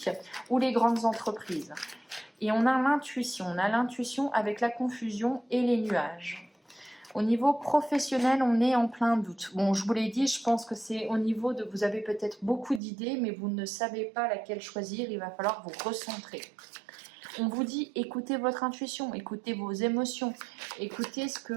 ou les grandes entreprises. Et on a l'intuition avec la confusion et les nuages. Au niveau professionnel, on est en plein doute. Bon, je vous l'ai dit, je pense que c'est au niveau de... Vous avez peut-être beaucoup d'idées, mais vous ne savez pas laquelle choisir. Il va falloir vous recentrer. On vous dit, écoutez votre intuition, écoutez vos émotions, écoutez ce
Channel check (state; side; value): drops out; left; at 12.8 s